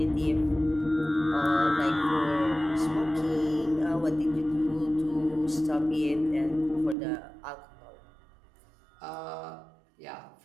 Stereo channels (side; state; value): left; drops out; at 7.0 s